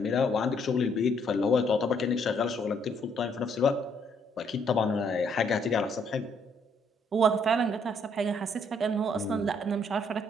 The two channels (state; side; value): normal; both; correlation 0.69